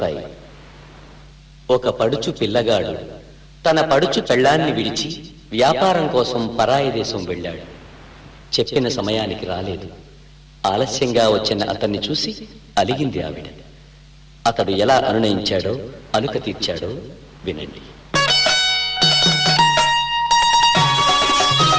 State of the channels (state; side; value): identical; both; correlation 1.00